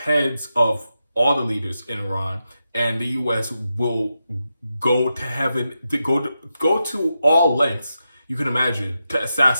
heads of all the leaders in Iran, and the U.S. will go to heaven, go to all lengths you can imagine to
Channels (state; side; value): inverted; both; correlation -0.88